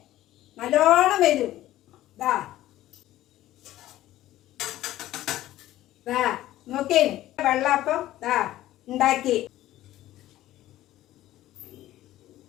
നല്ലോണം വരും. നോക്കേ, വെള്ളാപ്പം ഉണ്ടാക്കി.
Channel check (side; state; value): right; quieter; 14.6 dB